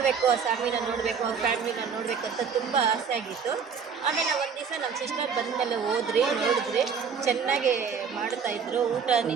ಆ ಸ್ವಾಮಿನ ನೋಡಬೇಕು, ಅವ್ರ ಫ್ಯಾಮಿಲಿನ ನೋಡಬೇಕು ಅಂತ ತುಂಬ ಆಸೆ ಆಗಿತ್ತು. ಆಮೇಲೆ ಒಂದು ದಿವಸ ನಮ್ಮ ಸಿಸ್ಟರ್ ಬಂದಮೇಲೆ ನೋಡಿದ್ರಿ, ಚೆನ್ನಾಗಿ ಮಾಡ್ತಾಯಿದ್ರು.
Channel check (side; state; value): left; quieter; 6.2 dB